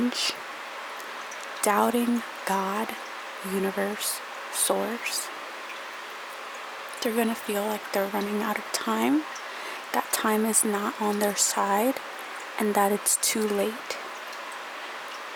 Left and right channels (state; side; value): identical; both; correlation 1.00